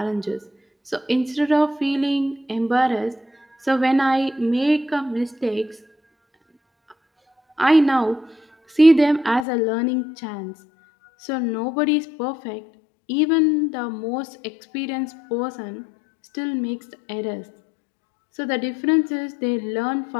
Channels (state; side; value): drops out; right; at 9.5 s